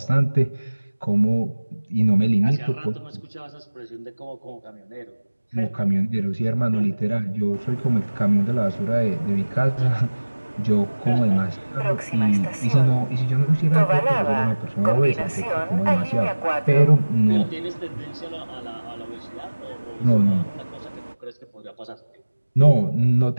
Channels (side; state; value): both; inverted; correlation -1.00